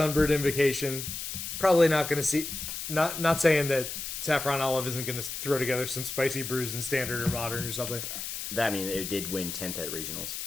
Invocation probably not going to see. Not saying that Saffron Olive isn't going to throw together some spicy brews in Standard or Modern or something. It did win 10th at regionals.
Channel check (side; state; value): left; noise; hiss, 6 dB below the sound